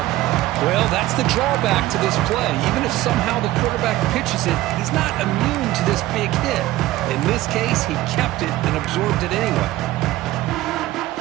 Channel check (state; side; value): quieter; left; 16.3 dB